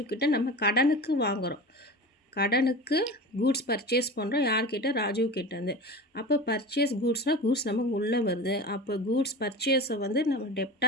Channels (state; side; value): normal; both; correlation 0.31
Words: கிட்ட நம்ம கடனுக்கு வாங்குகிறோம், கடனுக்கு கூட்ஸ் பர்ச்சேஸ் பண்ணுறோம். யார்கிட்ட, ராஜீவ் கிட்டேருந்து. அப்போ பர்ச்சேஸ் கூட்ஸ்னால் கூட்ஸ் நமக்கு உள்ளே வருது. அப்போ கூட்ஸ் பர்ச்சேஸை வந்து நம்ம